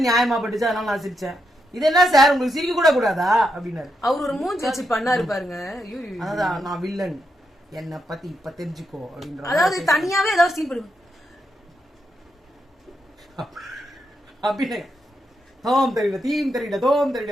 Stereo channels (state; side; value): normal; both; correlation 0.82